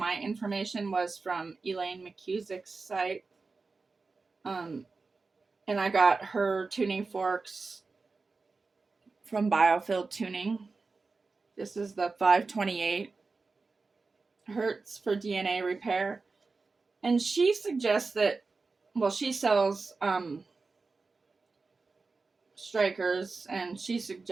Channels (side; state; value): left; quieter; 4.1 dB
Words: information was from Eileen McKusick's site. And I got her tuning forks from Biofield Tuning. This is the 528 hertz for DNA repair. And she suggests that, well, she sells strikers, and she